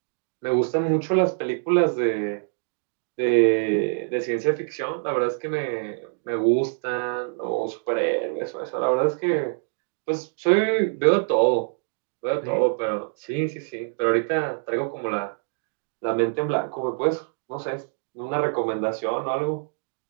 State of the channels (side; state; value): left; silent; digital silence